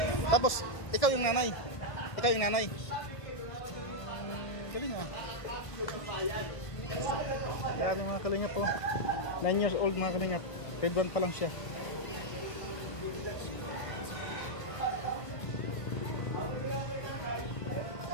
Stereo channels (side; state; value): right; late; 1.5 ms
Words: Tapos, ikaw yung nanay. Ikaw yung nanay. Galing nga. Grabe mga kalingap po. 9 years old mga kalingap. Grade 1 pa lang siya.